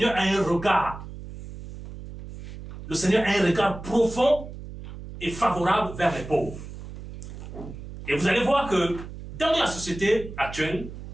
a un regard. Le Seigneur a un regard profond et favorable vers les pauvres. Et vous allez voir que dans la société actuelle,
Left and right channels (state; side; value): noise; right; hum, 12 dB below the sound